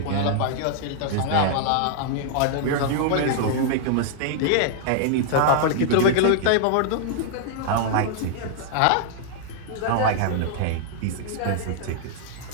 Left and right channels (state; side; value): different; both; correlation -0.01